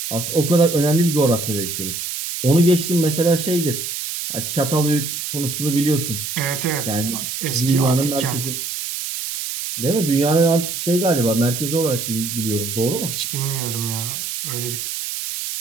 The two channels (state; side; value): noise; right; hiss, 5 dB below the sound